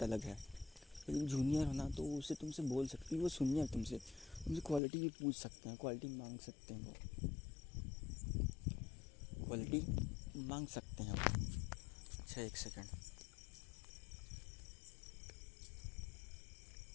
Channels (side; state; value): right; drops out; at 4.8 s